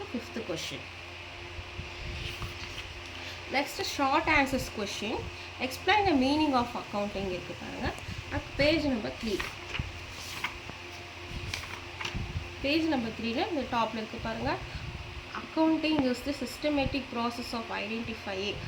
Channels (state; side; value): identical; both; correlation 1.00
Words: fifth question. Next short answers question. Explain the meaning of accounting இருக்குது பாருங்கள். அது பேஜ் நம்பர் 3. பேஜ் நம்பர் 3ல இந்த டாப்பில் இருக்குது பாருங்கள். Accounting is the systematic process of identifying